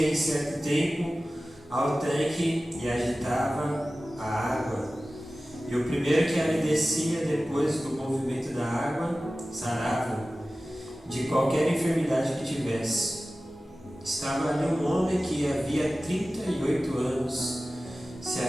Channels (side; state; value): both; normal; correlation 0.96